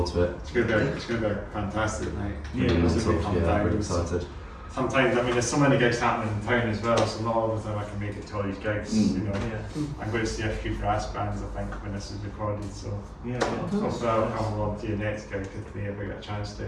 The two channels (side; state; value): both; identical; correlation 1.00